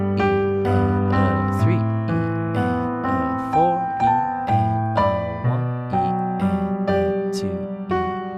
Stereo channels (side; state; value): both; identical; correlation 1.00